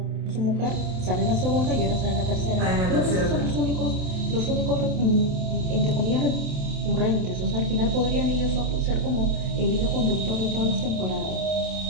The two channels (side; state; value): left; late; 27 ms